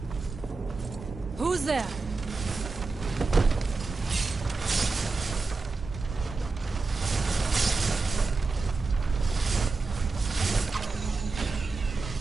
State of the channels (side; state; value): left; quieter; 4.0 dB